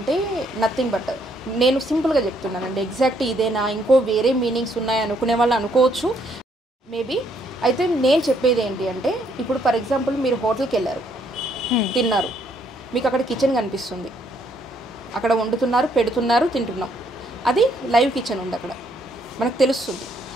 నథింగ్ బట్, నేను సింపుల్గా చెప్తున్నానండి, ఎగ్జాక్ట్ ఇదేనా ఇంకో వేరే మీనింగ్స్ ఉన్నాయి అనుకునే వాళ్ళు అనుకోవచ్చు మేబీ. అయితే నేను చెప్పేది ఏంటి అంటే, ఇప్పుడు ఫర్ ఎగ్జాంపుల్ మీరు హోటల్కి వెళ్ళారు, తిన్నారు, మీకు అక్కడ కిచెన్ కనిపిస్తుంది, అక్కడ వండుతున్నారు, పెడుతున్నారు, తింటున్నాం, అది లైవ్ కిచెన్ ఉంది, అక్కడ మనకు తెలుస్తుంది.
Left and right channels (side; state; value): both; normal; correlation 0.70